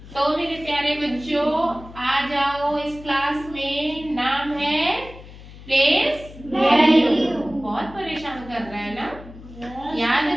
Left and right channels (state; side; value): noise; left; hum, 17 dB below the sound